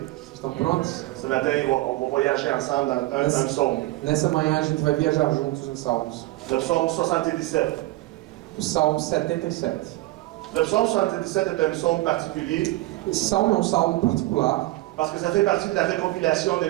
Vocês estão prontos? Ce matin, on va voyager ensemble dans un psaume. Nessa manhã a gente vai viajar juntos em Salmos. Le psaume 77. O Salmo 77. Le psaume 77 est un psaume particulier Esse salmo é um salmo particular, parce que ça fait partie de la récompilation des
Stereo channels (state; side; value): quieter; left; 18.8 dB